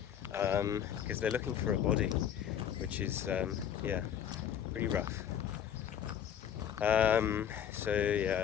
because they're looking for a body, which is yeah, pretty rough. So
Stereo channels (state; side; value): quieter; right; 9.3 dB